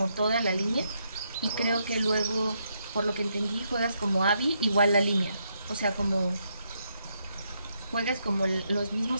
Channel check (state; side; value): inverted; both; correlation -0.78